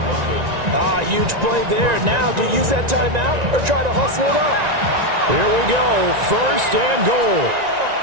Huge play there. Now, do you use that timeout or try to hustle it up? Here we go. 1st and goal.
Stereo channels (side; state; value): left; late; 1.9 ms